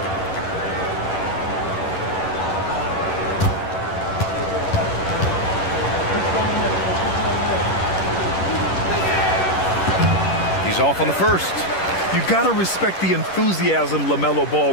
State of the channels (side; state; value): right; late; 10 ms